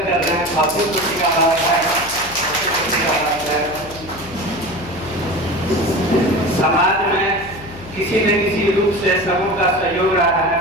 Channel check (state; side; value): noise; left; hum, 17 dB below the sound